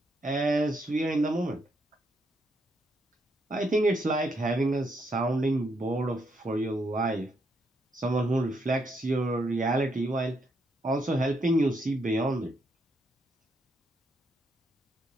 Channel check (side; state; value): both; normal; correlation 0.77